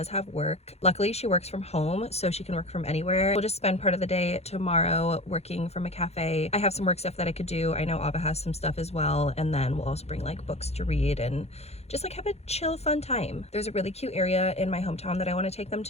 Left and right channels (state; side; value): late; right; 0.31 ms